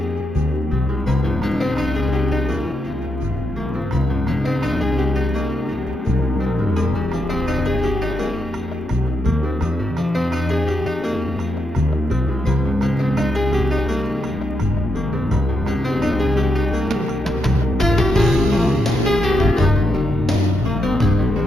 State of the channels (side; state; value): both; normal; correlation 0.82